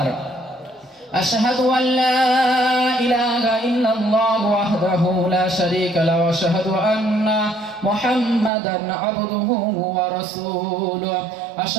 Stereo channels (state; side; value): drops out; left; at 8.5 s